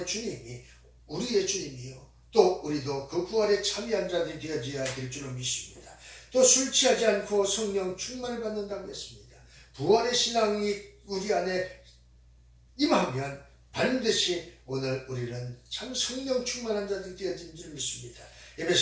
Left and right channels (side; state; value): both; identical; correlation 1.00